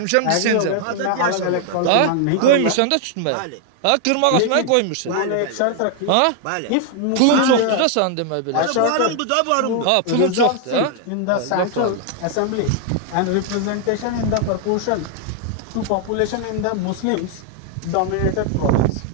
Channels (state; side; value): different; both; correlation 0.00